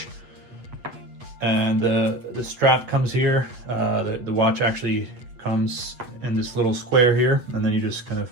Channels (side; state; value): left; late; 8.2 ms